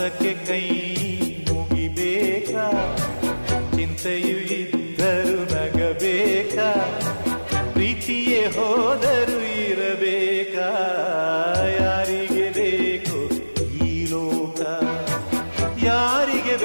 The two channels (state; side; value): inverted; both; correlation -1.00